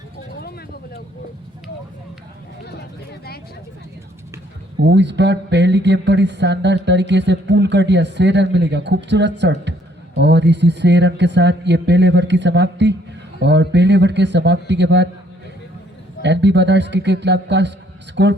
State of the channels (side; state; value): both; normal; correlation 0.65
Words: इस बार पहली गेम पर इस शानदार तरीके से पुल कर दिया, 6 रन मिलेगा। खूबसूरत शॉट और इसी 6 रन के साथ ये पहले ओवर की समाप्ति और पहले ओवर के समाप्ति के बाद एनबी ब्रदर्स क्रिकेट क्लब का स्कोर